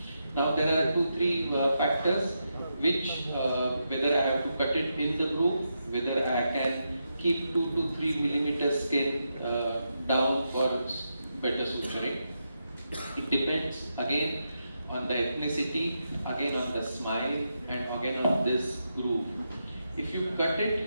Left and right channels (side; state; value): both; inverted; correlation -0.85